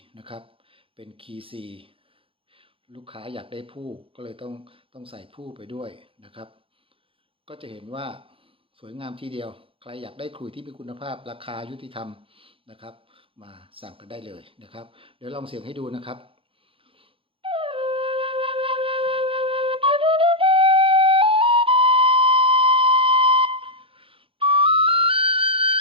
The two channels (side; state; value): left; late; 0.26 ms